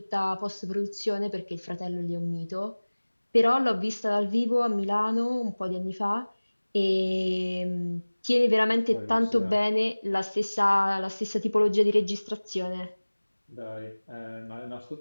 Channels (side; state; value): both; inverted; correlation -1.00